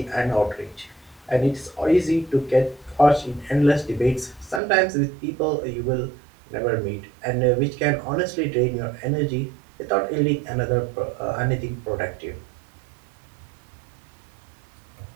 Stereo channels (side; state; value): left; drops out; at 4.6 s